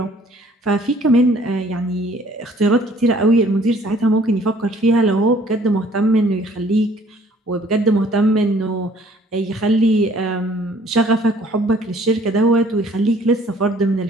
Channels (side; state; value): both; normal; correlation 0.58